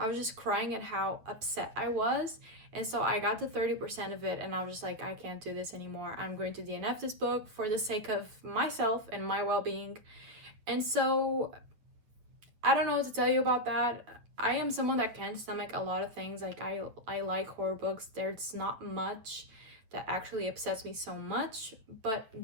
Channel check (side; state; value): left; late; 8.9 ms